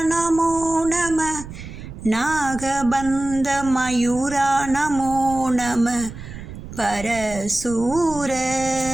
நமோ நம, நாகபந்த மயூரா நமோ நம, பரசூர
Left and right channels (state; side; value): noise; right; rumble, 12 dB below the sound